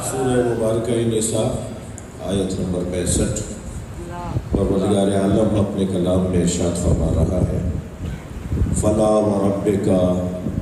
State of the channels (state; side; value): identical; both; correlation 1.00